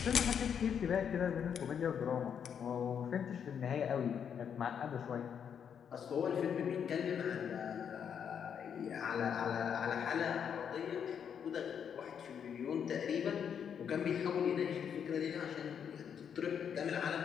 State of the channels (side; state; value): right; quieter; 7.8 dB